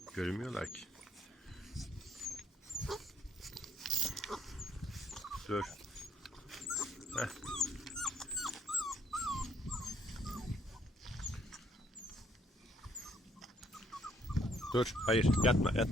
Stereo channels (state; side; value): normal; both; correlation 0.67